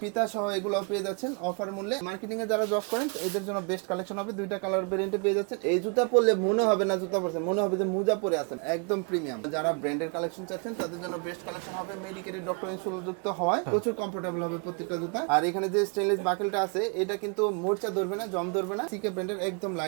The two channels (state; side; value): quieter; left; 36.5 dB